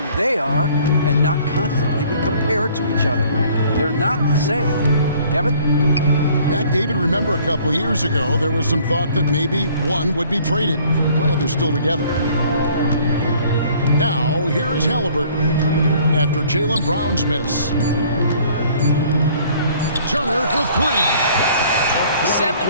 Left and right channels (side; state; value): both; inverted; correlation -0.56